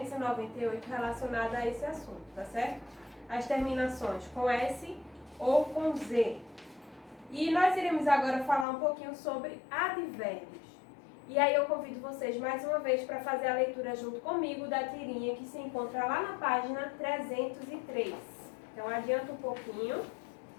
relacionada a esse assunto, tá certo? As terminações com S ou com Z. E nós iremos agora falar um pouquinho sobre advérbios. E aí eu convido vocês mais uma vez para fazer a leitura junto comigo da tirinha que se encontra lá na página 303. Então adianta um pouquinho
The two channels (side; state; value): right; drops out; at 8.7 s